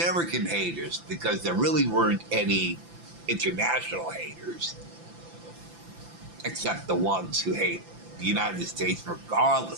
haters, because there really weren't any international haters, except the ones who hate the United States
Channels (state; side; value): late; left; 5.9 ms